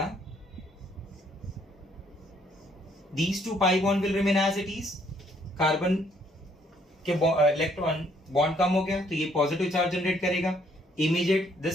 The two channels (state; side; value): normal; both; correlation 0.67